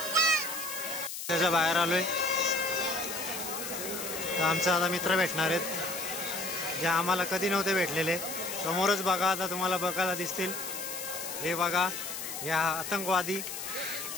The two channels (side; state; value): left; noise; hiss, 7 dB below the sound